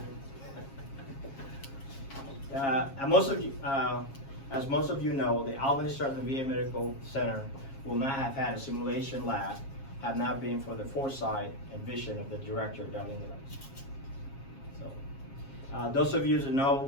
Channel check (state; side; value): late; right; 7.4 ms